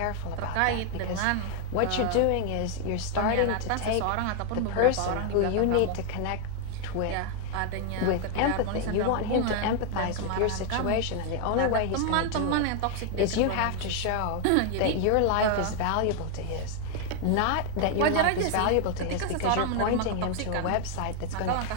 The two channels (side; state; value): both; different; correlation 0.00